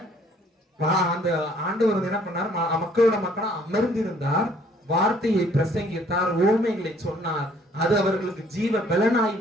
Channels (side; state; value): both; normal; correlation 0.60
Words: அந்த ஆண்டவர் என்ன பண்ணார்? மக்களோட மக்களா அமர்ந்திருந்தார், வார்த்தையை பிரசங்கித்தார், ஓமைகளை சொன்னார். அது அவர்களுக்கு ஜீவ பலனாய்